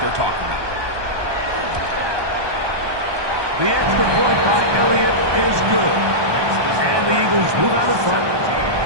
they're talking about. The extra point by Elliott is good. And the Eagles move out in front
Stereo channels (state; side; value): late; left; 1.2 ms